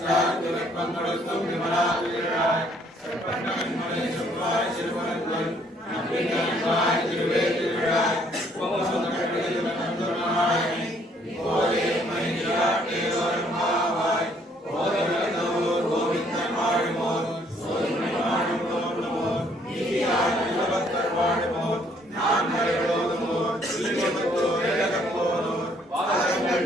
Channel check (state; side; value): normal; both; correlation 0.65